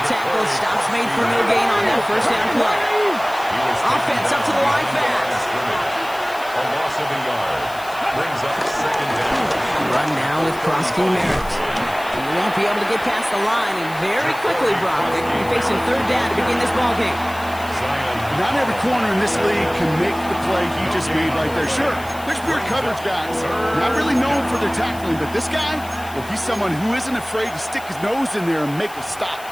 tackle. Stops made for no gain on that first down play. Offense up to the line fast. A loss of a yard. Brings up 2nd down. Run now with Prosky Merritt. You won't be able to get past the line, and very quickly, Brock, they're going to be facing 3rd down to begin this ballgame. Not every corner in this league can make the play he just made right there. Sure, there's pure coverage guys. Not really known for their tackling, but this guy, well, he's someone who isn't afraid to stick his nose in there and make a stop.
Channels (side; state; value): left; noise; hiss, 18 dB below the sound